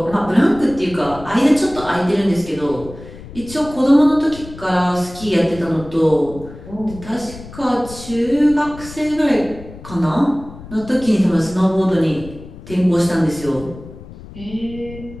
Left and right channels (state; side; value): noise; left; rumble, 16 dB below the sound